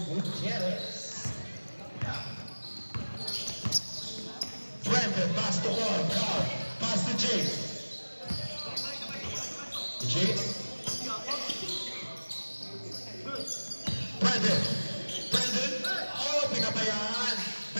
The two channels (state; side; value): inverted; both; correlation -1.00